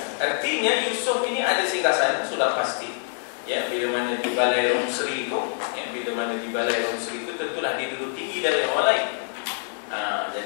Artinya Yusuf ini ada singgasana sudah pasti. Ya, bila mana di balai Romsri itu, ya, bila mana di balai Romsri itu tentulah dia duduk tinggi dari orang lain.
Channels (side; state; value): right; silent; digital silence